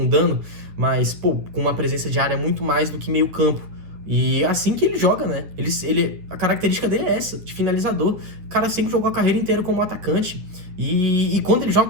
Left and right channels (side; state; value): left; late; 9.9 ms